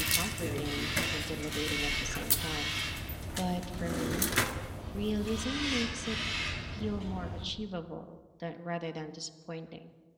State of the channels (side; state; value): both; identical; correlation 1.00